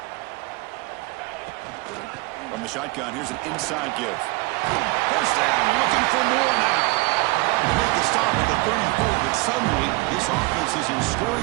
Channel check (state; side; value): quieter; left; 24.2 dB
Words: From the shotgun, here's an inside give. First down, looking for more suddenly, this offense is in